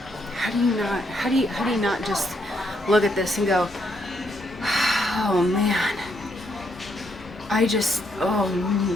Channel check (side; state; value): both; normal; correlation 0.75